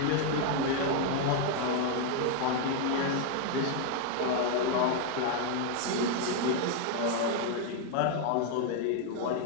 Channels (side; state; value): both; different; correlation 0.00